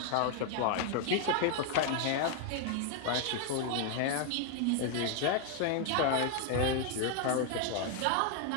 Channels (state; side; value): different; both; correlation 0.00